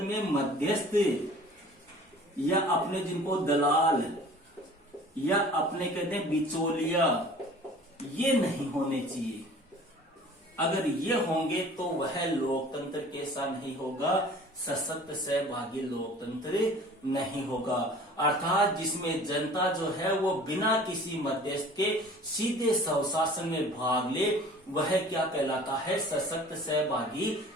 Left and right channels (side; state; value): both; normal; correlation 0.46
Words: में मध्यस्थ या अपने जिनको दलाल या अपने कहते हैं बिचौलिया, ये नहीं होने चाहिए। अगर ये होंगे तो वह लोकतंत्र कैसा नहीं होगा, सशक्त सहभागी लोकतंत्र नहीं होगा। अर्थात जिसमें जनता जो है वो बिना किसी मध्यस्थ के सीधे स्वशासन में भाग ले, वह क्या कहलाता है, सशक्त सहभागी